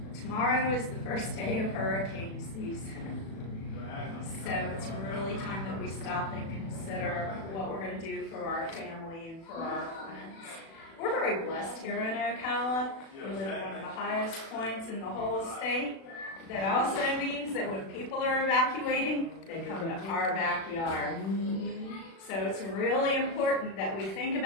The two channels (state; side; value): late; right; 36 ms